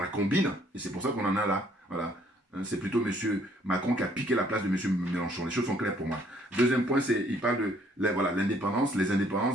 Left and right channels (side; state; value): both; normal; correlation 0.63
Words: combine, et c'est pour ça qu'on en a là. Voilà. C'est plutôt M. Macron qui a piqué la place de M. Mélenchon. Les choses sont claires pour moi. Deuxième point, il parle de l'indépendance, les indépendances